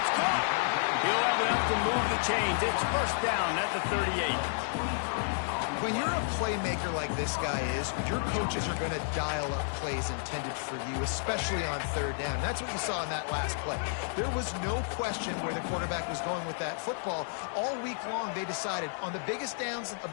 caught. He'll have enough to move the chains. It's first down at the 38. When you're a playmaker like this guy is, your coaches are going to dial up plays intended for you, especially on third down. That's what you saw in that last play. There was no question where the quarterback was going with that football. All week long, they decided on the biggest downs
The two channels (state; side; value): silent; right; digital silence